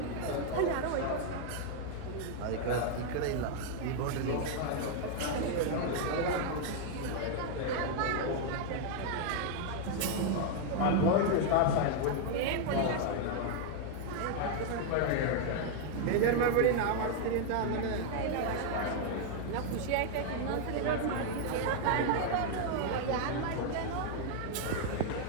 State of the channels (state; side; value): different; both; correlation 0.00